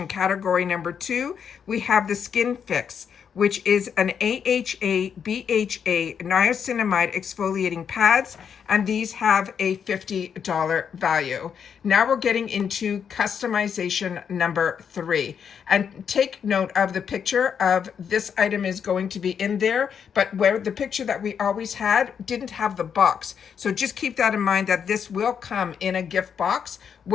category number 2, we have the Skin Fix. which is an AHA, BHA, niacinamide exfoliating pads, and these have a $50 value. Now we're getting into customization number 3. And take note of the picture of this item is going to be in there, but where the picture that we always had didn't have the box. So just keep that in mind that this will come in a gift box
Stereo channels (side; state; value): right; quieter; 7.4 dB